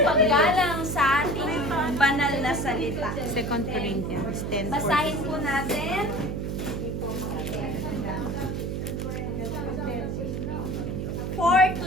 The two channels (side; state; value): right; noise; hum, 3 dB below the sound